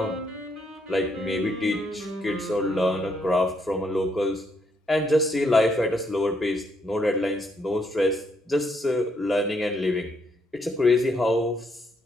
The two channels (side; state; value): both; normal; correlation 0.74